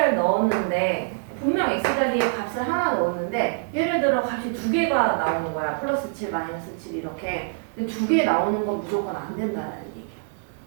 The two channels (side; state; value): left; silent; 62 dB below the other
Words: 넣었는데 분명 x 자리에 값을 하나 넣었는데 예를 들어 값이 두 개가 나오는 거야. 플러스 7, 마이너스 7 이렇게. 두 개 나오는 건 무조건 안 된다는 얘기야.